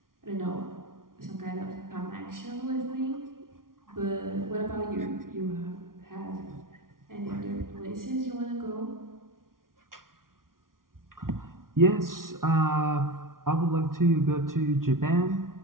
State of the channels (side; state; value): left; late; 0.91 ms